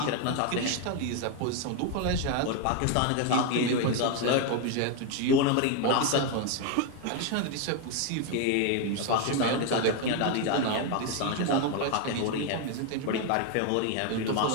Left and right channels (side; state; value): both; different; correlation 0.01